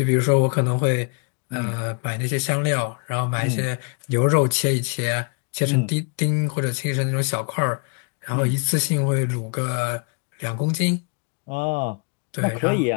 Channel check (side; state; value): right; quieter; 35.3 dB